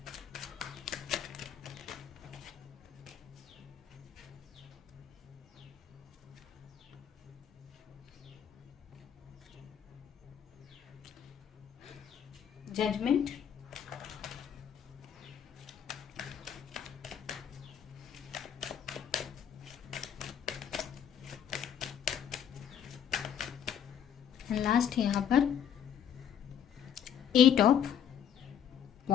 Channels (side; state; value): right; quieter; 8.8 dB